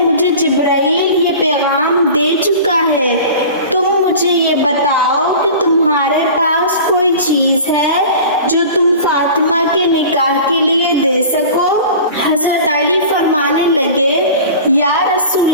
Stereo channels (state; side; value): inverted; both; correlation -0.38